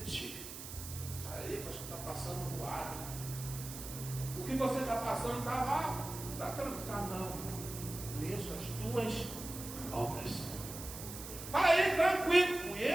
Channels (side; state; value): right; noise; hiss, 10 dB below the sound